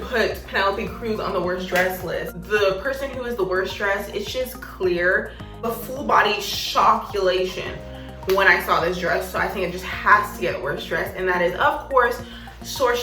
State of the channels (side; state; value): both; identical; correlation 1.00